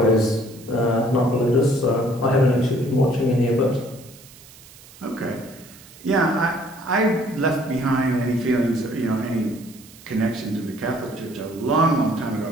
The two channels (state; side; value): noise; right; hiss, 22 dB below the sound